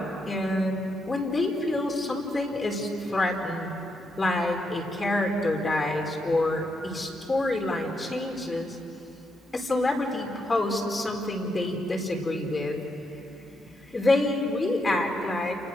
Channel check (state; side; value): normal; both; correlation 0.80